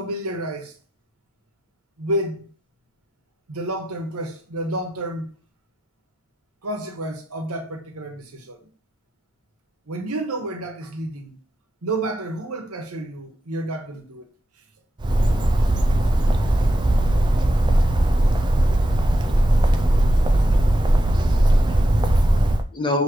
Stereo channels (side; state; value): both; normal; correlation 0.87